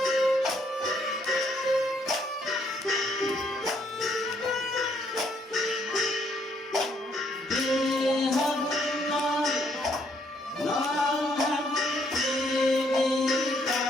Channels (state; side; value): normal; both; correlation 0.70